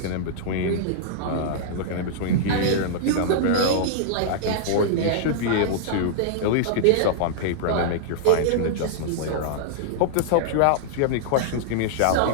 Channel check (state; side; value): different; both; correlation -0.01